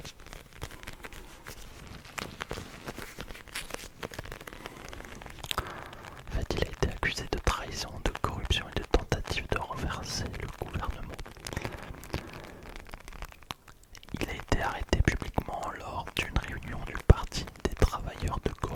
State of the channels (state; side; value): identical; both; correlation 1.00